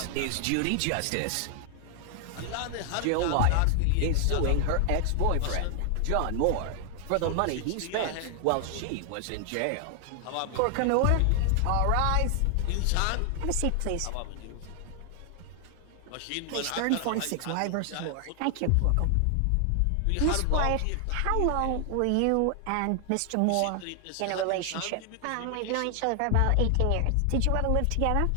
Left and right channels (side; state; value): both; different; correlation 0.00